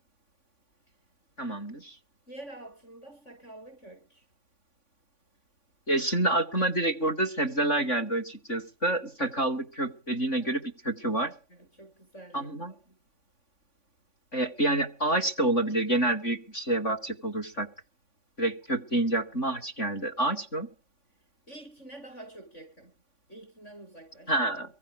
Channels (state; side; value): late; right; 3.5 ms